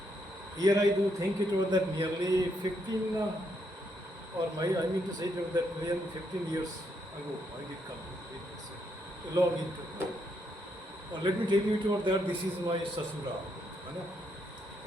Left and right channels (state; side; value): normal; both; correlation 0.76